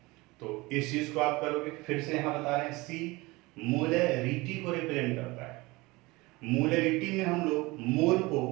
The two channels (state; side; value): quieter; left; 22.4 dB